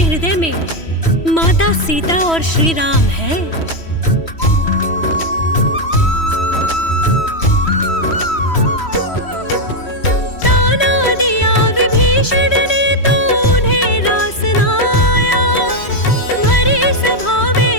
हृदय में माता सीता और श्री राम है? ताना दिया विभीषण ने तो उन्हें रास न आया, भरी सभा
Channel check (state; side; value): late; right; 3.1 ms